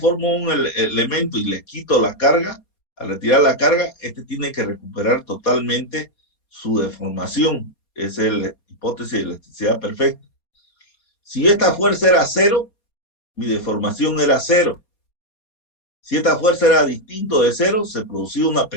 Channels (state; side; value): late; right; 4.3 ms